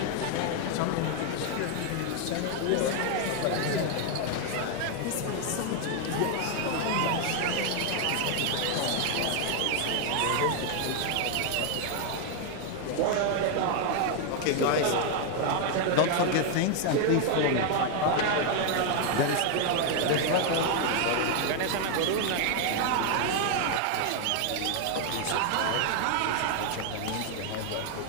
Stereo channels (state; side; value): different; both; correlation 0.00